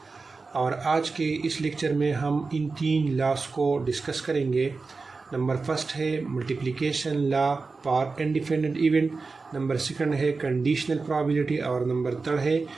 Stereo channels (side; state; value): left; quieter; 4.1 dB